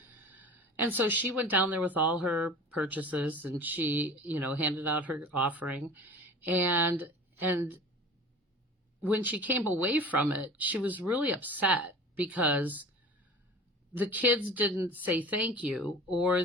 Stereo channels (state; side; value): normal; both; correlation 0.39